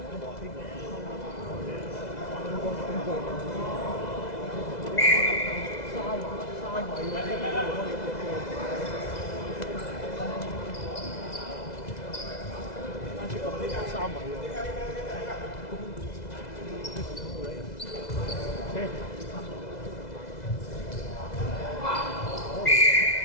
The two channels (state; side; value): late; right; 2.0 ms